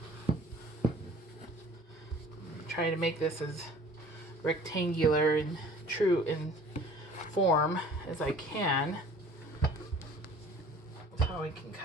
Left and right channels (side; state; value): both; normal; correlation 0.49